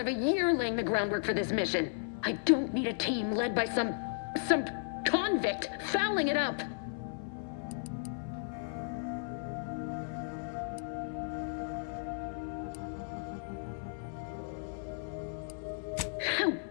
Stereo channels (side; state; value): right; silent; 55 dB below the other